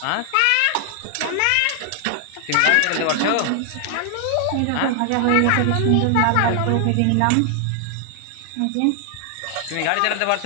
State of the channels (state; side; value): different; both; correlation 0.00